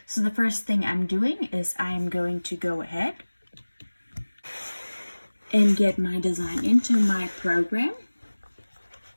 So the first thing I'm doing is I am going to go ahead and get my design into my program.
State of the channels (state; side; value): inverted; both; correlation -1.00